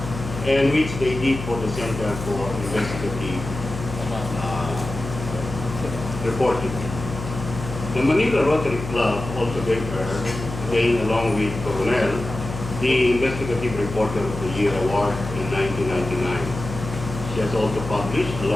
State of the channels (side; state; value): left; noise; hum, 8 dB below the sound